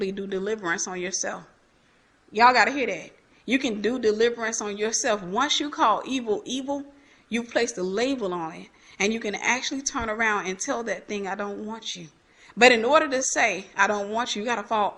do deliverance on yourself. Y'all got to hear that. You can do deliverance on yourself. Once you call evil, evil, you place the label on it. And you can actually turn around and tell that thing, I don't want you. But in order to say, I don't want you, you got to fall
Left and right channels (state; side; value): identical; both; correlation 1.00